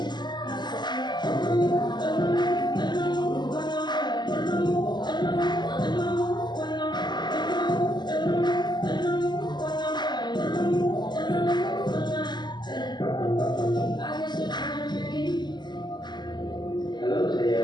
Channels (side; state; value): right; late; 0.21 ms